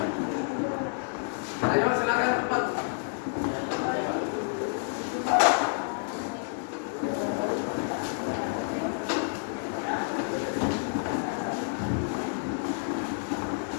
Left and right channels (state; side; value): silent; right; digital silence